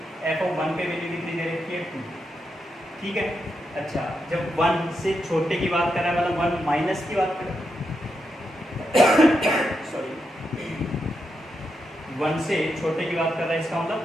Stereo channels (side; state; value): both; normal; correlation 0.84